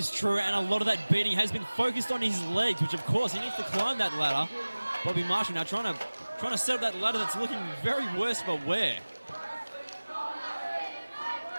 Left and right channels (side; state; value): both; inverted; correlation -1.00